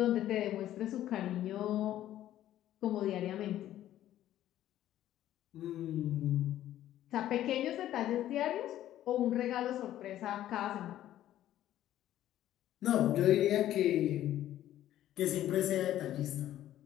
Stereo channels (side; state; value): right; quieter; 12.8 dB